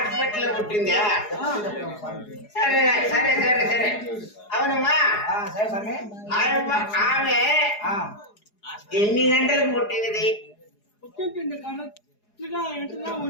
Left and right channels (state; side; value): late; right; 4.8 ms